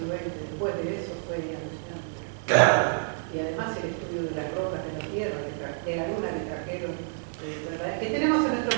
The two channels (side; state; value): left; silent; digital silence